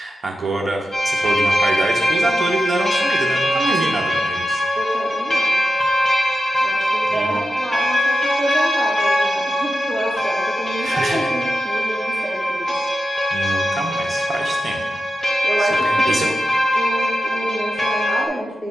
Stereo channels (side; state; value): both; normal; correlation 0.91